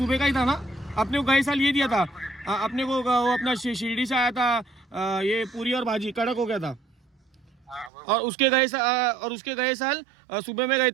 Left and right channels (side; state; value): left; drops out; at 7.9 s